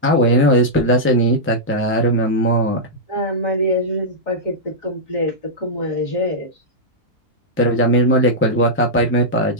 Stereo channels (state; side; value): normal; both; correlation -0.09